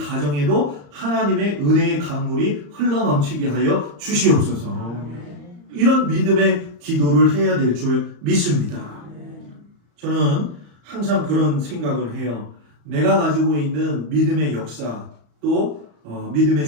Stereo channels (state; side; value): late; left; 34 ms